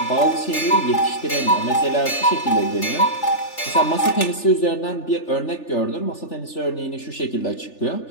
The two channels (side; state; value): right; late; 3.4 ms